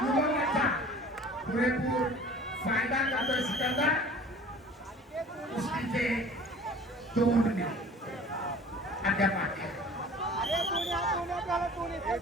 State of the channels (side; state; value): both; normal; correlation 0.46